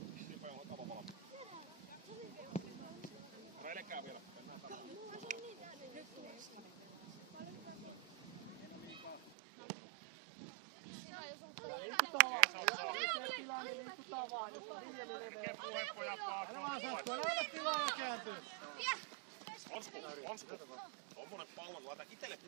Sipe on kava valmis. Reilekää vielä. Liikutaan vaan. Jos ei tilaa, niin liikutaan vaan. Jos on viljely leveä. Älä vaan sattu, älä ota tilaa ja kääntyy. Onsko? Tommonen pallo, kun laita itelle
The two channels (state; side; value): drops out; left; at 9.3 s